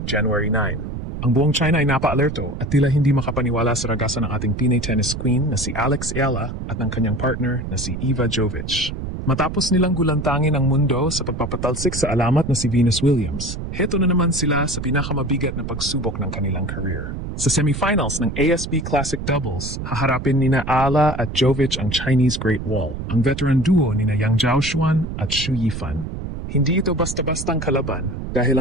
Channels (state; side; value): noise; right; rumble, 7 dB below the sound